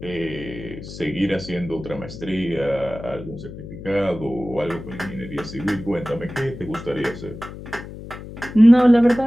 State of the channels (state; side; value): noise; left; hum, 12 dB below the sound